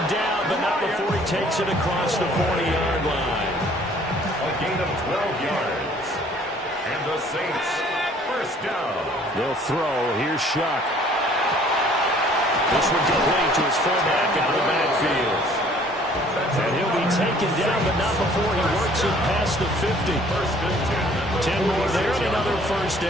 down, but not before he takes it across the 40-yard line. A gain of 12 yards. And the Saints, first down. They'll throw. Here's Shuck. This one complete to his fullback out of the backfield. And he'll be taken down, but not before he works it past the 50. 10 more there, and another first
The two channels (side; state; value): both; normal; correlation 0.56